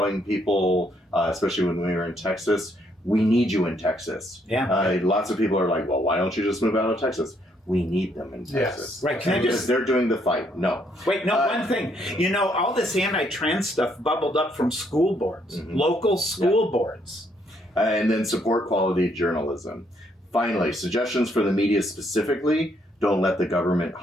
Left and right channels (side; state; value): both; normal; correlation 0.71